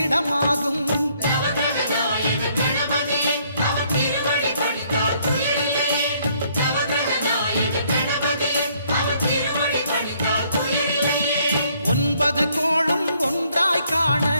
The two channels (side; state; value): both; inverted; correlation -0.66